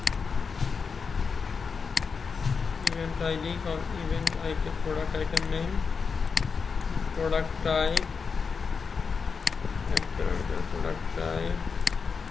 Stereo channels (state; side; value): quieter; right; 5.4 dB